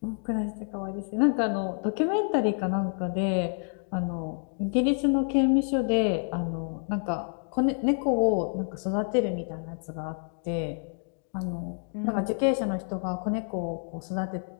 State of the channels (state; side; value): silent; right; 59 dB below the other